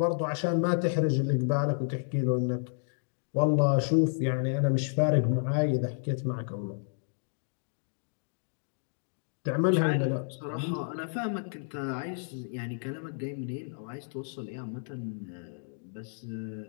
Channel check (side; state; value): right; silent; digital silence